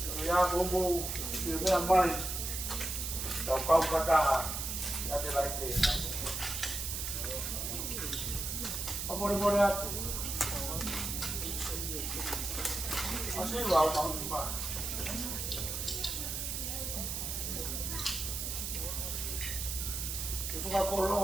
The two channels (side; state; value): right; noise; hiss, 3 dB below the sound